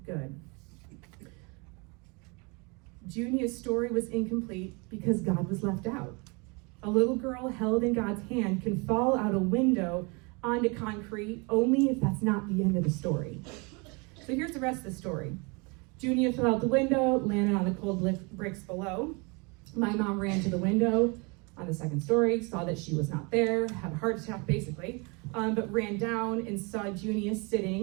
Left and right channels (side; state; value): left; quieter; 30.1 dB